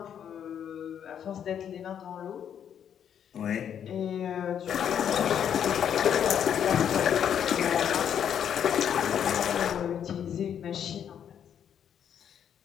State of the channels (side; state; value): right; quieter; 8.9 dB